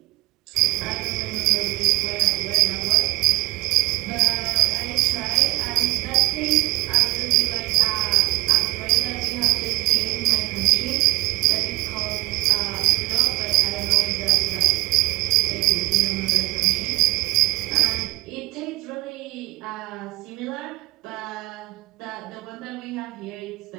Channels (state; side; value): quieter; left; 20.3 dB